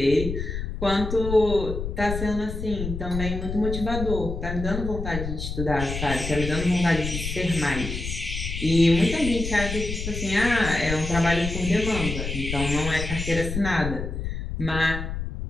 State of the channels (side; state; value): left; noise; rumble, 5 dB below the sound